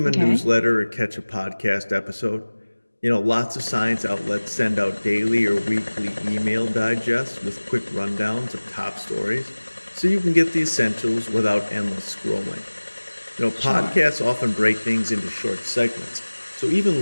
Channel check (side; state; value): both; inverted; correlation -1.00